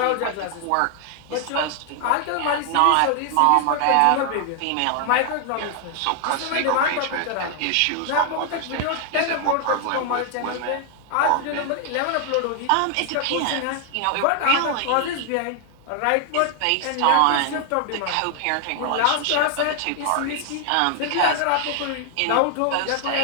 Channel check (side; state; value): both; different; correlation 0.00